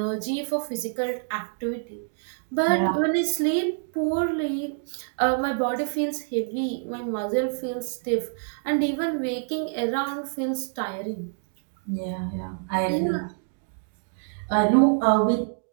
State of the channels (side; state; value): left; silent; digital silence